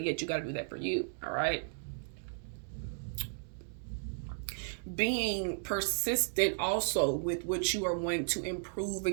you got to do that for you, all right? Being persistent also with what you are wanting to improve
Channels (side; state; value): left; silent; digital silence